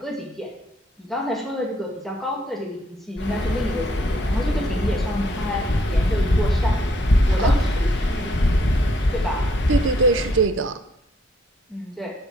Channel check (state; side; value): normal; both; correlation 0.69